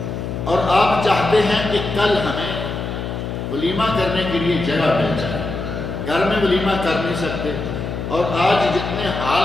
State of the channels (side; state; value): left; noise; hum, 5 dB below the sound